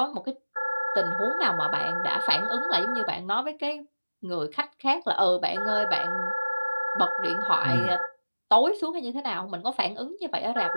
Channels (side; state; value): both; inverted; correlation -1.00